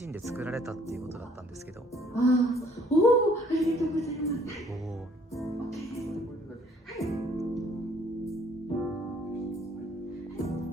身で作られたっていうことだったんですけど。ありがとうございます。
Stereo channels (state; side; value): normal; both; correlation 0.61